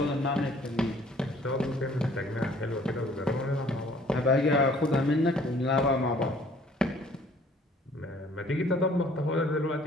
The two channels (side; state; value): both; normal; correlation 0.57